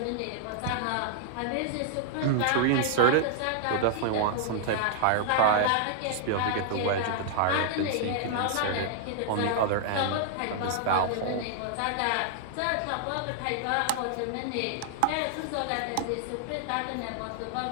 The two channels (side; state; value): both; different; correlation -0.01